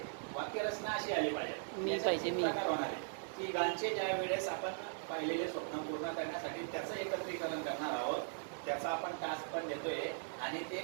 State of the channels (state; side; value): silent; left; 52 dB below the other